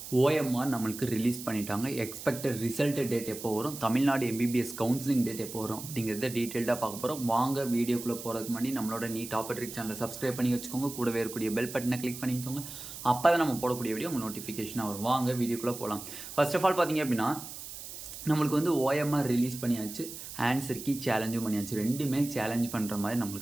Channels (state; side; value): noise; right; hiss, 11 dB below the sound